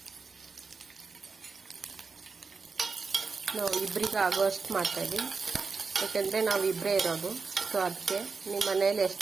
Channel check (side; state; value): left; quieter; 4.8 dB